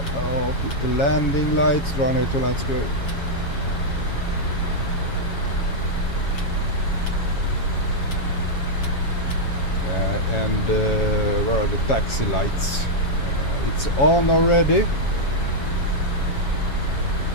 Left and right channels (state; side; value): late; right; 7.3 ms